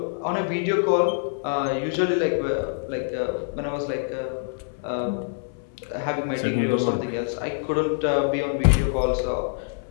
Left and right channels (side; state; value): right; silent; 62 dB below the other